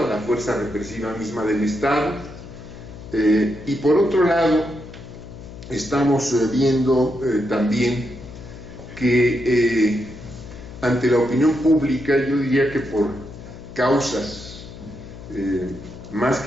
a la fuerza represiva misma del Estado. Y por otro lado, estamos viendo también que ante la opinión pública, yo diría que por causas más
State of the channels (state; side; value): noise; left; hum, 14 dB below the sound